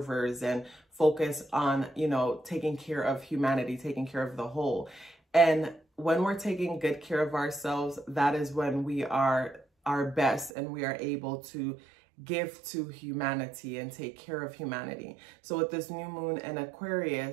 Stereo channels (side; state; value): left; drops out; at 10.5 s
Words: and focus on, you know, taking care of humanity, taking care of the whole. And when we're taking good care of ourselves, that is when we are our best and we are able to give to humanity and take care of humanity. So with this new moon in